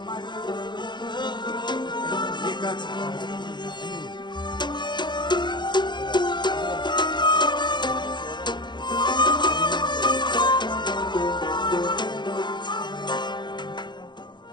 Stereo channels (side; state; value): right; late; 0.22 ms